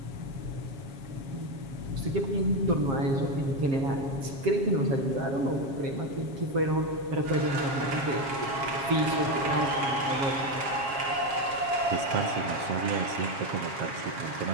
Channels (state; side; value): late; left; 7.3 ms